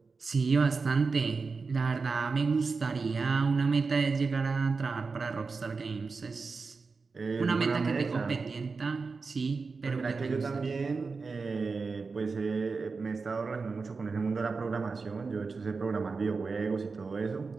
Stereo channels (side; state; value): left; quieter; 4.5 dB